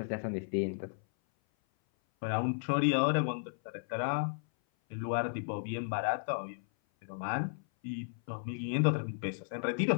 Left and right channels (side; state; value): right; silent; 55 dB below the other